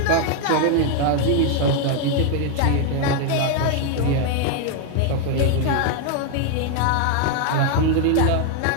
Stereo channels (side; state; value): both; different; correlation 0.00